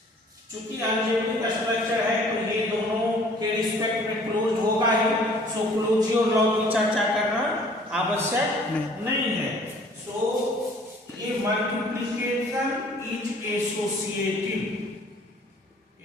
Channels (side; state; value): both; normal; correlation 0.54